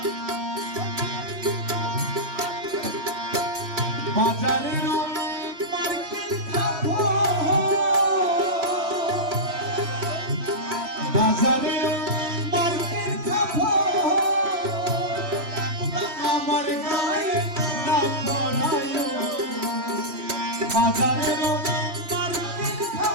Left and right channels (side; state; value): left; late; 3.1 ms